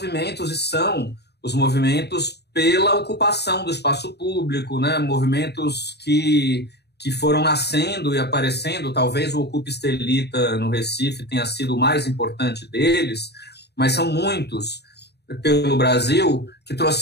e são os movimentos pela ocupação do espaço público, né, movimentos que foram nascendo e aparecendo. Talvez o Ocupa Estelita no Recife tenha sido o mais importante deles, mas são muitos pelo Brasil que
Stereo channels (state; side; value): late; right; 0.48 ms